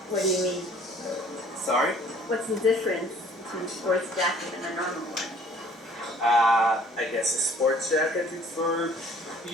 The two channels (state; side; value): normal; both; correlation 0.55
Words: What do you mean? Sorry? What's the difference between a sports jacket and a normal one? I guess a sports jacket is for